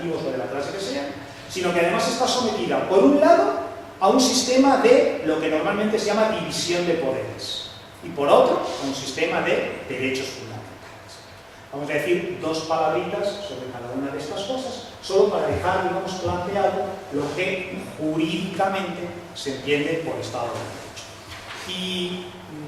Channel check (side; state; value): both; identical; correlation 1.00